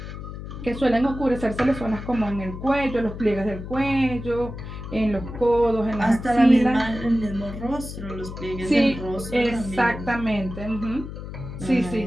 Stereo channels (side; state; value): left; noise; hum, 10 dB below the sound